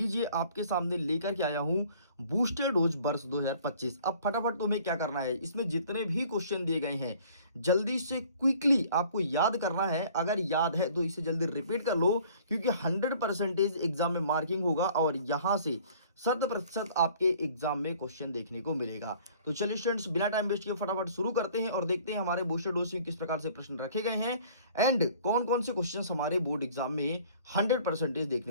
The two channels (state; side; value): inverted; both; correlation -0.53